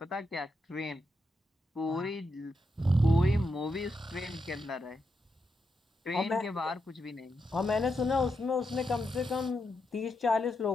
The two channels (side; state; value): both; normal; correlation 0.84